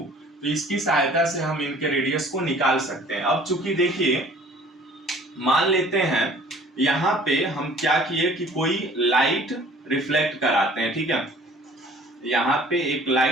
तो इसकी सहायता से हम इनके रेडियस को निकाल सकते हैं। अब चूंकि देखिए मान लेते हैं यहाँ पे हम क्या किए कि कोई लाइट रिफ्लेक्ट कराते हैं, ठीक है, यहाँ पे एक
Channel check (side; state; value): both; normal; correlation 0.51